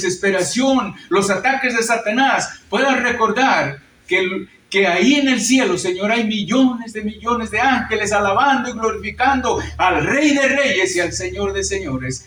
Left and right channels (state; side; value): identical; both; correlation 1.00